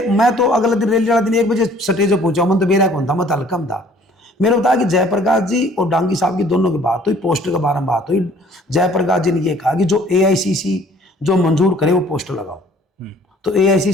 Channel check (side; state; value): both; normal; correlation 0.55